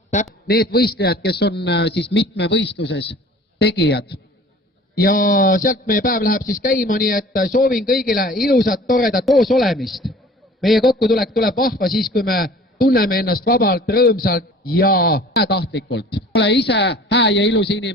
need võistlejad, kes on siis mitmevõistluses tegijad. Ja sealt meie päev läheb siis käima, nii et soovin kõigile ilusat, toredat koos olemist. Meie kokkutulek tuleb vahva siis, kui me tunneme ennast vabalt, rõõmsalt ja tahtlikult. Ole ise hää ja ilus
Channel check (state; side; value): normal; both; correlation 0.47